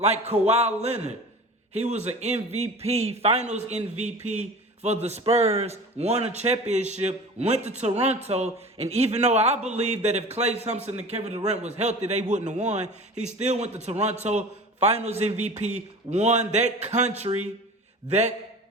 Kawhi Leonard. He was an MVP, finals MVP for the Spurs, won a championship, went to Toronto, and even though I believe that if Klay Thompson and Kevin Durant was healthy, they wouldn't have won, he still went to Toronto, finals MVP, won that country,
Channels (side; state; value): both; normal; correlation 0.37